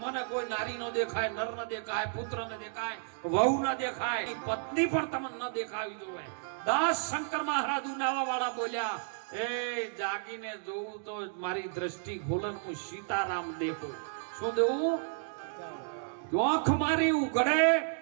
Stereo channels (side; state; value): left; silent; digital silence